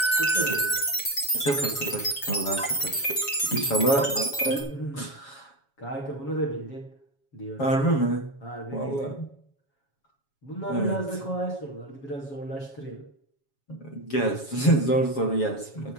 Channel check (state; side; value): late; right; 7.3 ms